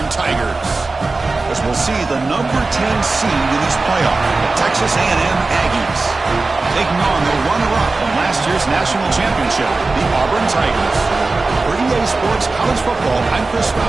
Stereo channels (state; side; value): quieter; left; 3.6 dB